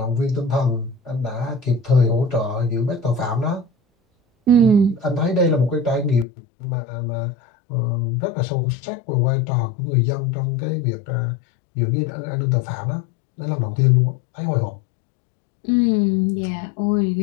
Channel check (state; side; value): drops out; right; at 6.2 s